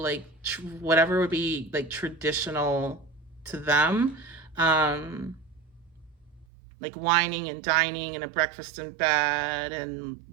whatever would be like traditional to them. Like wining and dining and a breakfast in bed and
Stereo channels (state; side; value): drops out; left; at 6.5 s